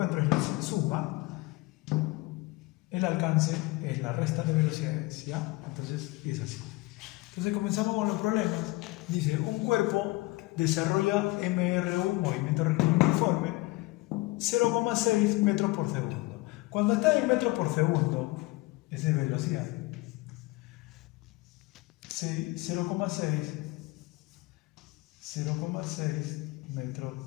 es la suma, el alcance es la resta de velocidades, ¿ya? Entonces es así. Entonces comenzamos con los problemas. Dice, un cuerpo desarrolla MRU, movimiento rectilíneo uniforme, 0,6 metros por segundo. Cuando está en metros por segundo, esa es velocidad. 0,6 metros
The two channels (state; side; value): quieter; right; 21.4 dB